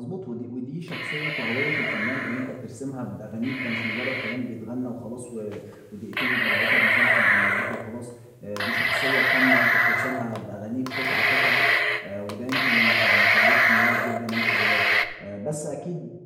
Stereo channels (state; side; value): identical; both; correlation 1.00